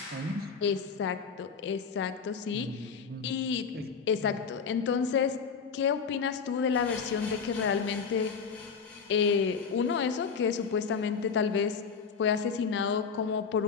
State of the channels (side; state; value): right; quieter; 5.9 dB